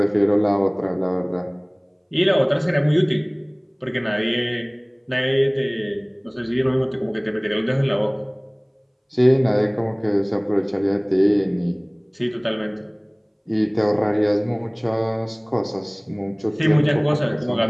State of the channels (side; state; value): both; identical; correlation 1.00